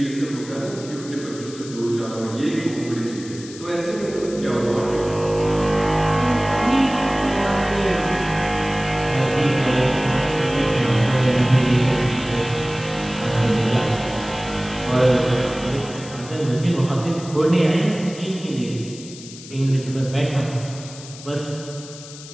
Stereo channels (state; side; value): noise; left; hiss, 16 dB below the sound